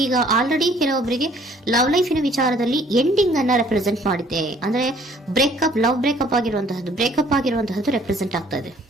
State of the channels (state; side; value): normal; both; correlation 0.59